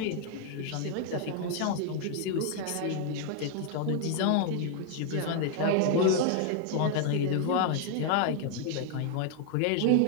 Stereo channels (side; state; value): both; different; correlation 0.00